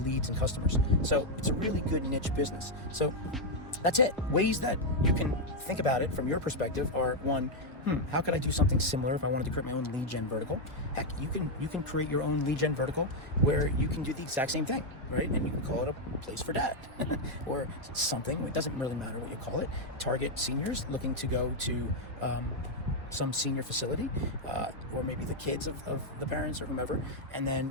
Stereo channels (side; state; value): both; normal; correlation 0.00